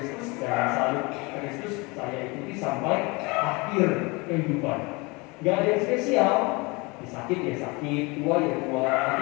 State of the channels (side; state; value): right; quieter; 26.5 dB